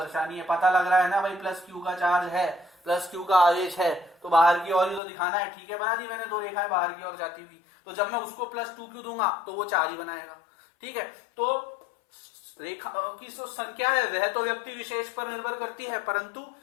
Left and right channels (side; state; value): right; drops out; at 5.0 s